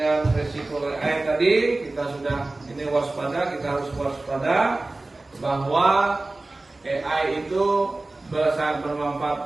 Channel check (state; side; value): quieter; left; 3.0 dB